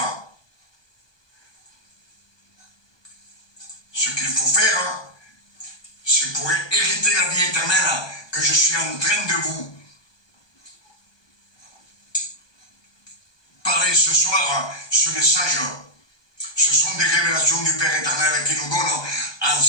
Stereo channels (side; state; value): right; late; 1.2 ms